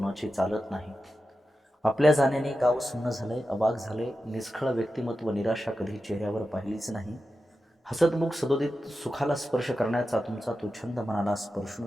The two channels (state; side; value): normal; both; correlation 0.91